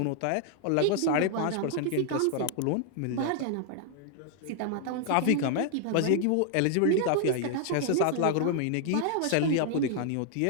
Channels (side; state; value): both; different; correlation 0.00